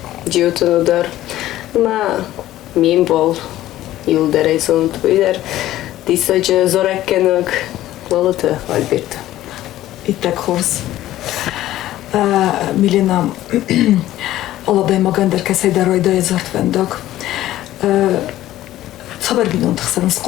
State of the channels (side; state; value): right; quieter; 14.3 dB